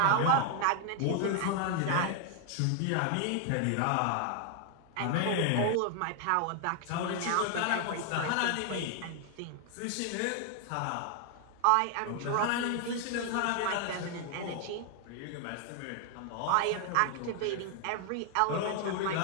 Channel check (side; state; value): both; different; correlation 0.00